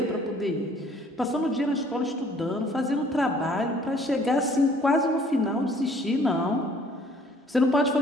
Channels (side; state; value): both; normal; correlation 0.58